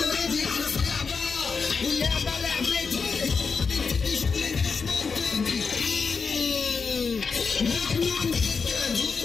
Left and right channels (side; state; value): right; quieter; 5.2 dB